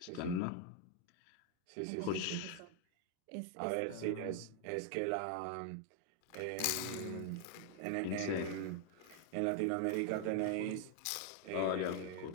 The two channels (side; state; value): both; different; correlation 0.00